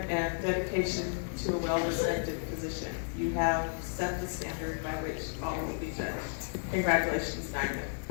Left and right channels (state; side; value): silent; right; 56 dB below the other